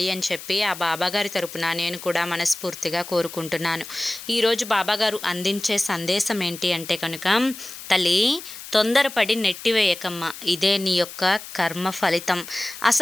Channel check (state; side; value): noise; left; hiss, 13 dB below the sound